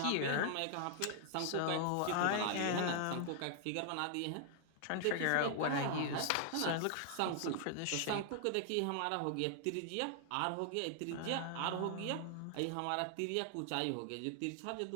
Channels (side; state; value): both; different; correlation 0.00